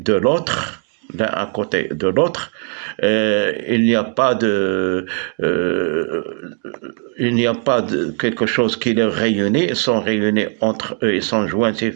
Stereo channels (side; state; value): left; quieter; 38.9 dB